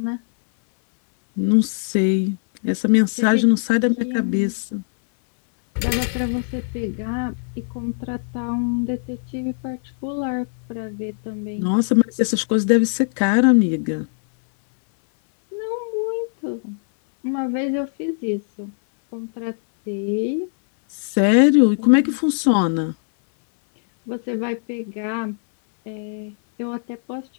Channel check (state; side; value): silent; right; 61 dB below the other